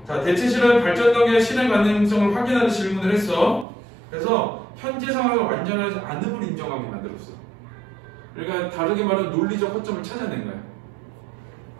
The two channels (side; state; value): left; drops out; at 3.7 s